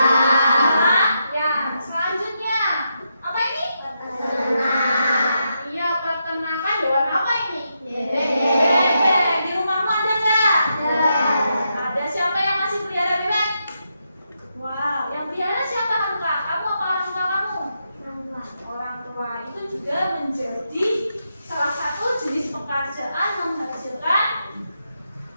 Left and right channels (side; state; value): both; inverted; correlation -0.83